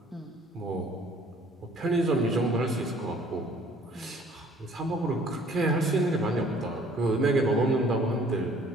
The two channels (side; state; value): both; normal; correlation 0.56